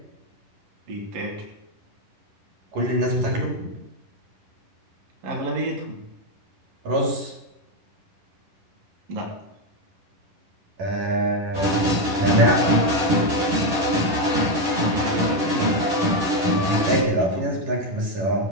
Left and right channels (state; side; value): late; left; 10 ms